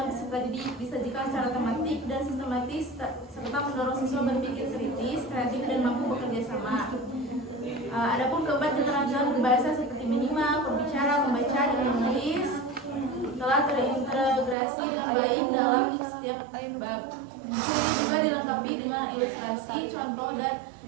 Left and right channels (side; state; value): left; drops out; at 14.6 s